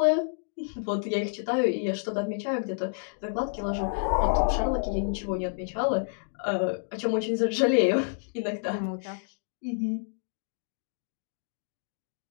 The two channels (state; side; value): silent; right; digital silence